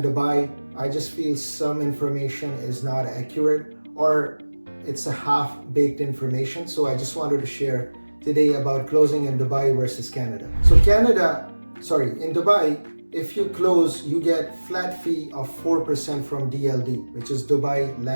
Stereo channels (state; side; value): inverted; both; correlation -1.00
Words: Dubai. I just feel some information is not accurate or it's a half-baked information. So I just wanted to share today about closing in Dubai versus Canada. So in Dubai, if you close, you get flat fee of 4% from DLD, which is Dubai